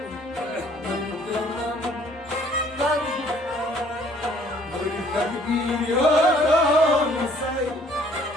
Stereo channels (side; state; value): both; normal; correlation 0.59